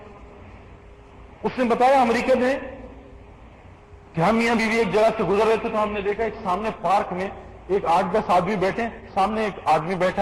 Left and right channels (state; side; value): identical; both; correlation 1.00